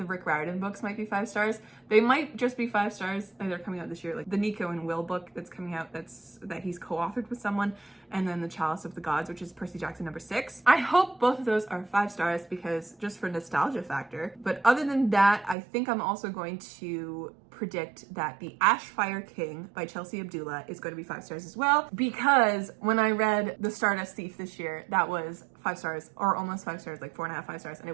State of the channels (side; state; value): left; drops out; at 15.6 s